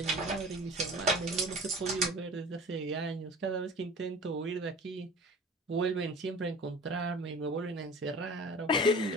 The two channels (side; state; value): both; normal; correlation 0.42